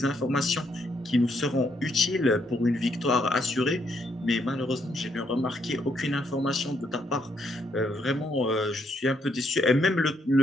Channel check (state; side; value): normal; both; correlation 0.73